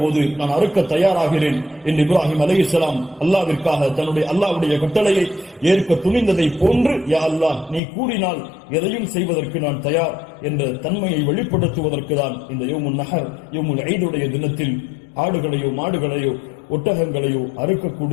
போது, நான் அறுக்க தயாராகிறேன் என்று இப்ராஹிம் அலைஹிஸ்ஸலாம் அல்லாஹ்விற்காக தன்னுடைய அல்லாஹ்வுடைய கட்டளையை ஏற்க துணிந்ததை போன்று, யா அல்லாஹ் நீ கூறினால் எதையும் செய்வதற்கு நான் தயார் என்ற தன்மையை வெளிப்படுத்துவதற்கு தான் இந்த யௌமுன் நஹர், யௌமுல் ஈதுடைய தினத்தில் ஆடுகளையோ மாடுகளையோ ஒட்டகங்களையோ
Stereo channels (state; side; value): drops out; right; at 7.8 s